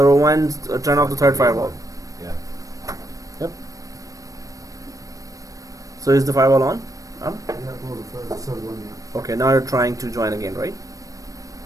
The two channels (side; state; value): left; late; 0.16 ms